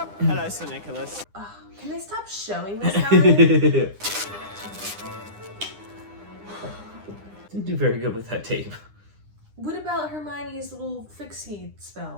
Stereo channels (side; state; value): left; late; 9.9 ms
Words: Hello, Sir Nicholas. Can they stop showing this guy? Didn't do very good with that tape. What about Hermione's little fixie